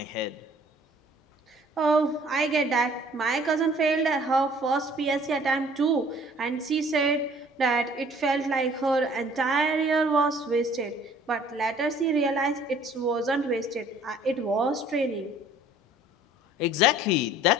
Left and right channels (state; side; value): normal; both; correlation 0.55